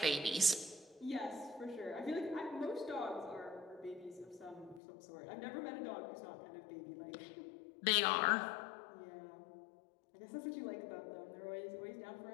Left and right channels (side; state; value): right; drops out; at 4.8 s